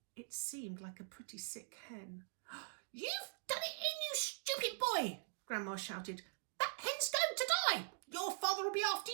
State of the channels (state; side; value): silent; left; digital silence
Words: It seemed like a pretty sick hen. "You've done it in, you stupid boy!" Grandma shouted. "That hen's going to die! Your father will be after